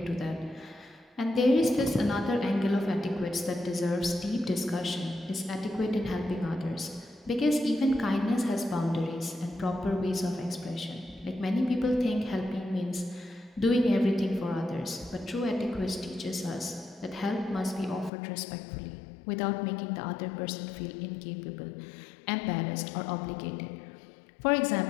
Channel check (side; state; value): right; drops out; at 18.1 s